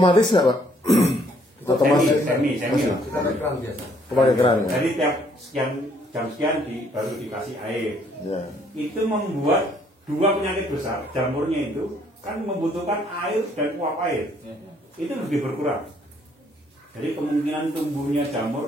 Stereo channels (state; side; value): normal; both; correlation 0.65